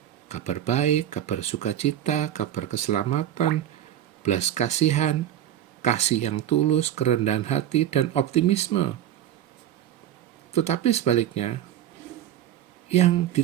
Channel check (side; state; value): left; quieter; 11.3 dB